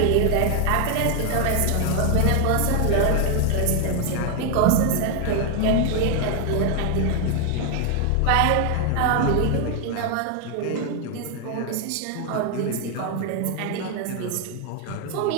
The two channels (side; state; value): both; different; correlation 0.01